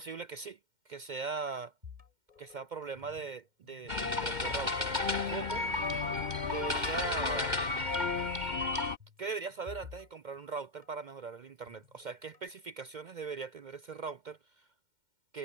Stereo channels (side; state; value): left; late; 2.1 ms